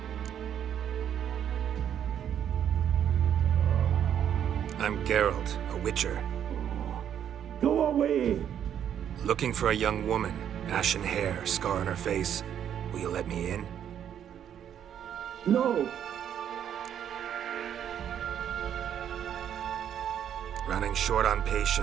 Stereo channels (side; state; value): left; quieter; 9.4 dB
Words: I'm Geralt, a witcher. Go away! Looking for a young woman. Ashen hair, scar on her face. Will you let me in? No! Running short on